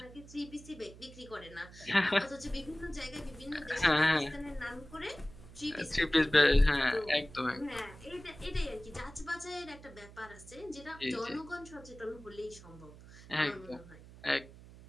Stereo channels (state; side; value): noise; right; hum, 18 dB below the sound